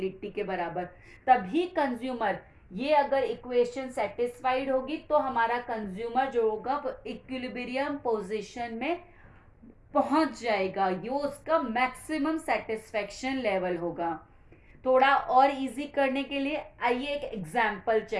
के बराबर। तभी कंज्यूमर, ये अगर इक्वेशन सेटिस्फाइड होगी तो हमारा कंज्यूमर जो होगा वो इक्विलिब्रियम पोजीशन में पहुंच जाएगा, ये उसका मैक्सिमम सेटिस्फेक्शन लेवल होगा। थोड़ा और इजी करने के लिए आइए एक एग्जाम्पल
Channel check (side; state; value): both; identical; correlation 1.00